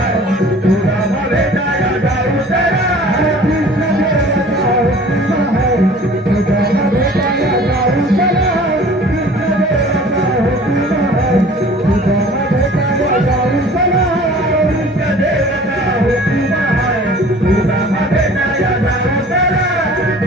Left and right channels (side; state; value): both; normal; correlation 0.47